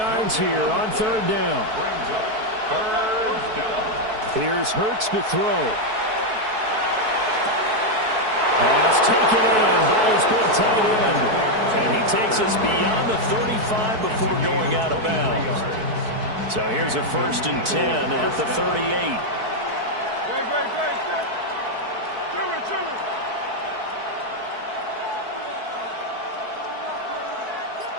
here on 3rd down. Here's Hurts to throw. Pass taken in by his big tight end. And he takes us beyond the 35 before going out of bounds. So here's a 1st and 10 at the 38.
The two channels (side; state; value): left; late; 4.6 ms